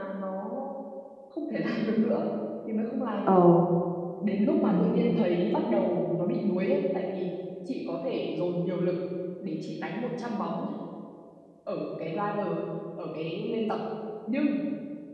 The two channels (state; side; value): identical; both; correlation 1.00